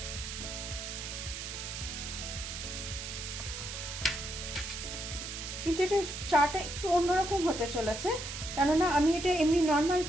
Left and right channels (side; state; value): right; noise; hiss, 7 dB below the sound